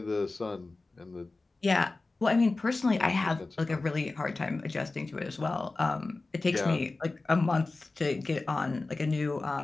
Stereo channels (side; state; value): right; quieter; 3.4 dB